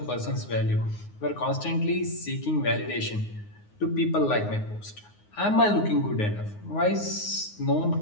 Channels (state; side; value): late; right; 9.6 ms